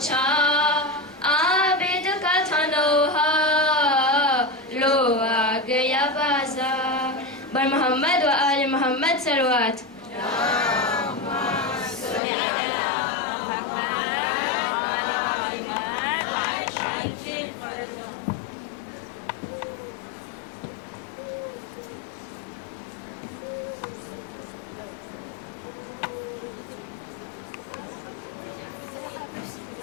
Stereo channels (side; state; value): right; drops out; at 12.2 s